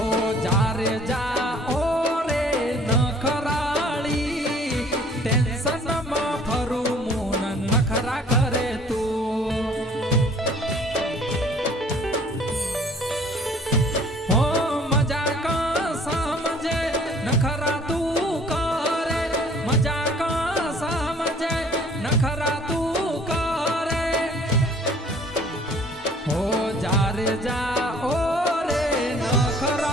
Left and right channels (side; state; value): both; normal; correlation 0.54